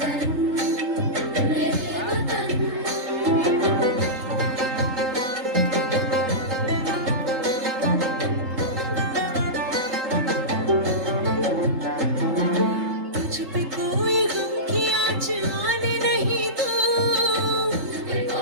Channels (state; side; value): late; left; 3.8 ms